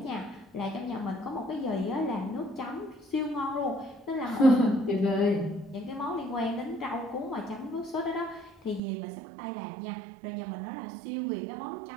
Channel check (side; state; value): left; drops out; at 8.8 s